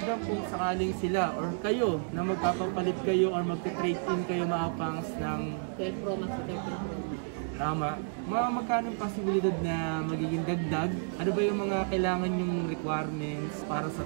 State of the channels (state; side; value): silent; left; digital silence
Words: kung sakaling sila or kayo na magpapapalit kayo or mag-trade in kayo mga pangs ng 12 Pro Max, 13 Pro Max. Tama. Magkano yung posibilidad na magiging dagdag? Ano ba yung mga kailangan yung requirements para sa